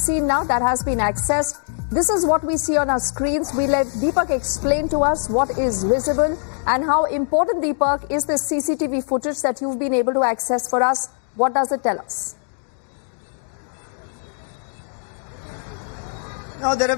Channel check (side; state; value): right; silent; 64 dB below the other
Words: now that has been accessed. This is what we see on our screens. We let Deepak explain to us what is visible and how important, Deepak, is this CCTV footage that you've been able to access for us. What does it tell us? Now, there